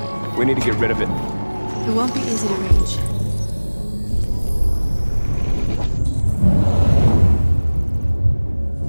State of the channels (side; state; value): both; inverted; correlation -1.00